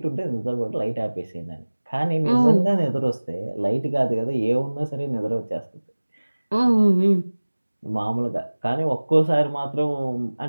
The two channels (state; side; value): inverted; both; correlation -1.00